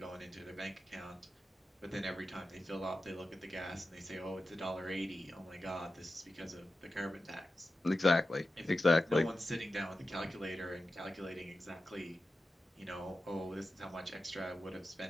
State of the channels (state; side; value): normal; both; correlation 0.92